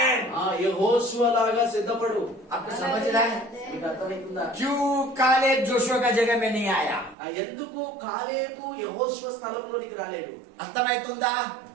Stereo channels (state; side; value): drops out; left; at 7.2 s